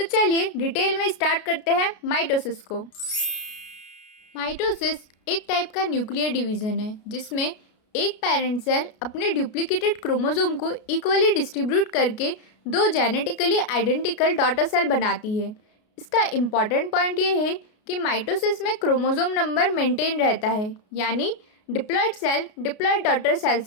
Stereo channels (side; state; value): right; late; 33 ms